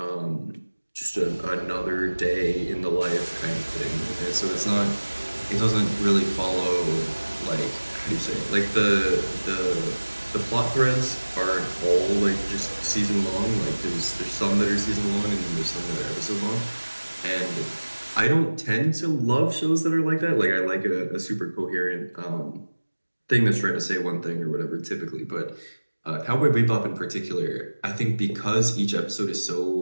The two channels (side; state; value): both; inverted; correlation -1.00